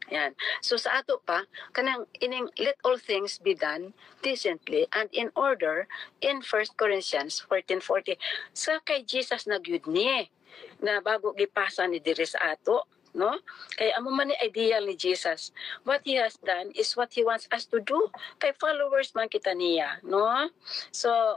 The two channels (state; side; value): quieter; right; 7.2 dB